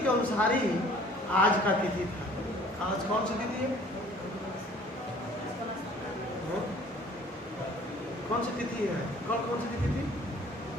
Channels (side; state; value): both; normal; correlation 0.53